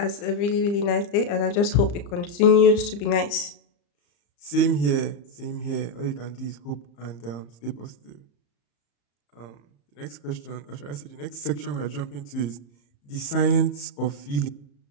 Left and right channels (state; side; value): late; right; 34 ms